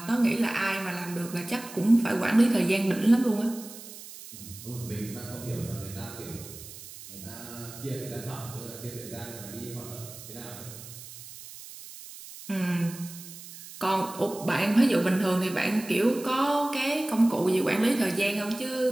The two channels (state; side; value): noise; right; hiss, 15 dB below the sound